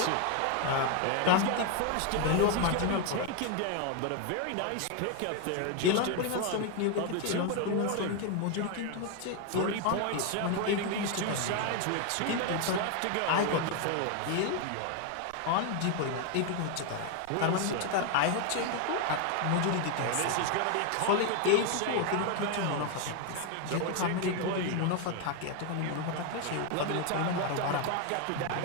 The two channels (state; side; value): different; both; correlation 0.01